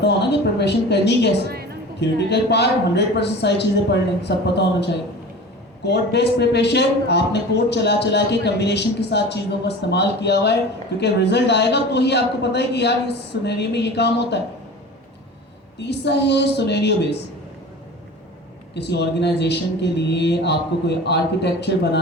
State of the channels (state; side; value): normal; both; correlation 0.36